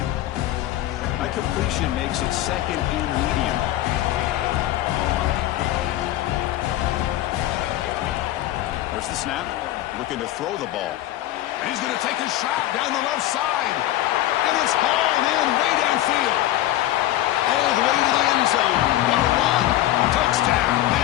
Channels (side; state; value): right; quieter; 14.4 dB